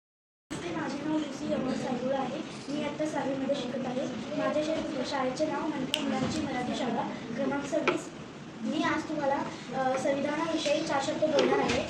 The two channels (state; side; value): identical; both; correlation 1.00